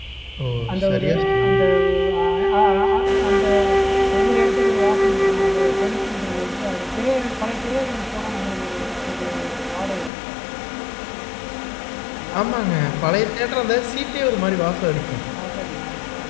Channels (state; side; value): drops out; right; at 10.1 s